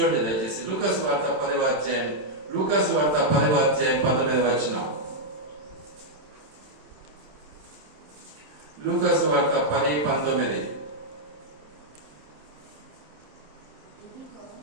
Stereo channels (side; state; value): left; late; 27 ms